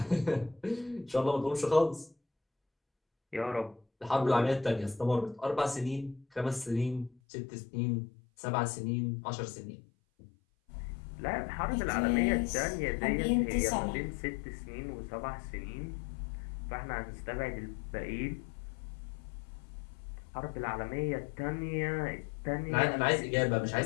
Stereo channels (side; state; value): right; drops out; at 7.2 s